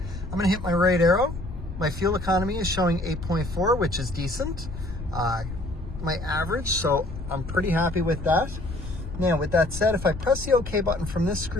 I'm going to hit my right arrow My fuel economy is showing 8.4, which is decent. My average, so I'm pretty happy with that. Now, with that said, if I press the OK button from this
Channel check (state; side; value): noise; left; rumble, 9 dB below the sound